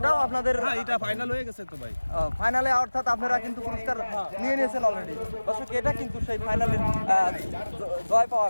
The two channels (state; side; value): inverted; both; correlation -1.00